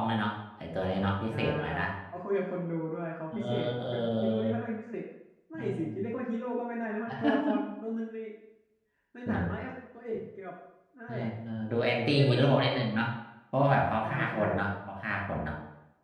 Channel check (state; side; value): identical; both; correlation 1.00